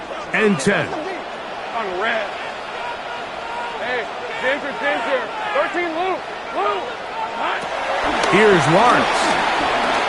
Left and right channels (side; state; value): both; identical; correlation 1.00